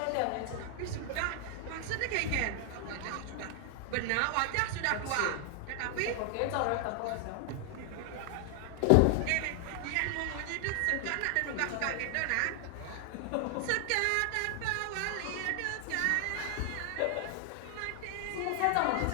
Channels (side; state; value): both; different; correlation 0.00